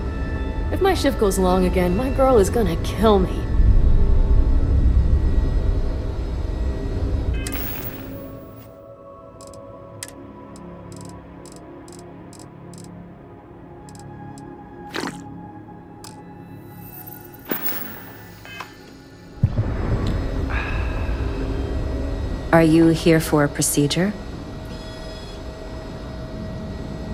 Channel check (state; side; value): identical; both; correlation 1.00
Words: If my shift goes long again, my girl is gonna kill me. Are you here for a procedure?